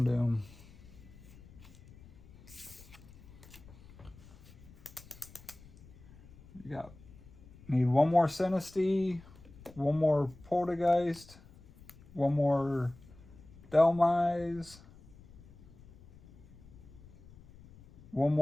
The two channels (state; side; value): noise; left; rumble, 21 dB below the sound